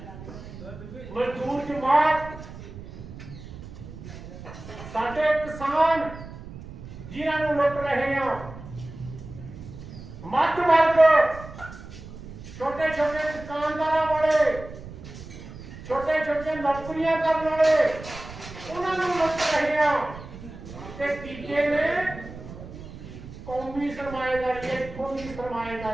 ਜਮਾਤ, ਸਾਡੇ ਕਿਸਾਨ ਜਿਨ੍ਹਾਂ ਨੂੰ ਲੁੱਟ ਰਹੇ ਆ, ਮੱਧ ਵਰਗ, ਛੋਟੇ ਛੋਟੇ ਦੁਕਾਨਦਾਰਾਂ ਵਾਲੇ, ਛੋਟੇ ਛੋਟੇ ਨੌਕਰੀਆਂ ਕਰਨ ਵਾਲੇ, ਉਹਨਾਂ ਨੂੰ ਲੁੱਟ ਰਹੇ ਆ। ਤੇ ਤੀਜੇ ਨੇ ਕੌਮੀ ਸਰਮਾਏਦਾਰੀ, ਇੱਥੋਂ ਦੀ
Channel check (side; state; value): right; noise; rumble, 14 dB below the sound